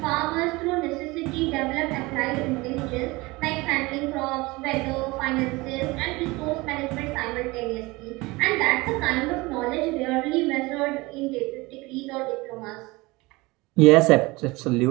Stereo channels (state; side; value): quieter; left; 22.7 dB